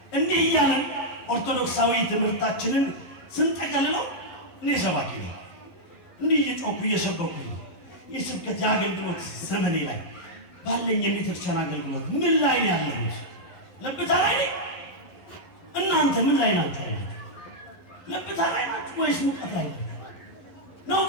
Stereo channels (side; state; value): right; late; 11 ms